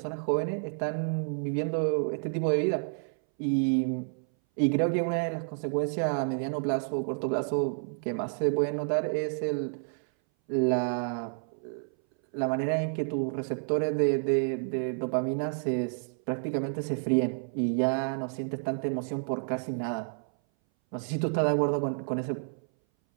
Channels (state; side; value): silent; left; 58 dB below the other